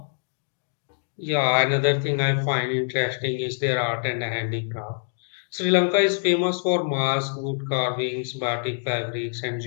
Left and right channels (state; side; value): silent; right; digital silence